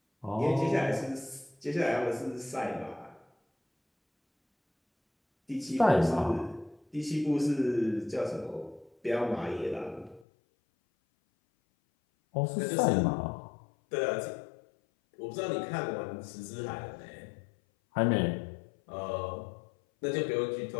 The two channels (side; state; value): right; drops out; at 10.2 s